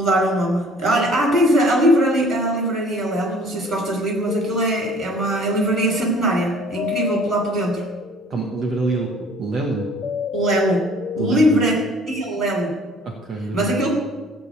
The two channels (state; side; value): normal; both; correlation 0.53